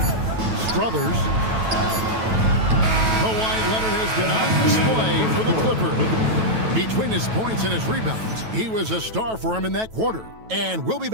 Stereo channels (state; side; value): late; left; 9.2 ms